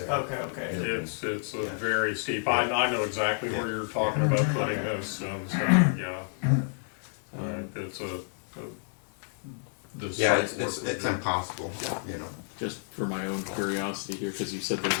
there. okay. it's a very steep, I know exactly where you're talking about putting this, so, yeah. It's the Yeah, site it's work- impossible, Just for my own curiosity here, because you said there's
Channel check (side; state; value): right; silent; digital silence